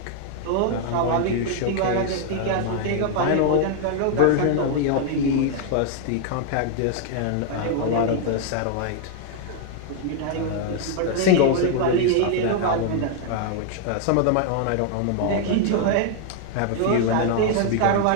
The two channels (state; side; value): different; both; correlation 0.00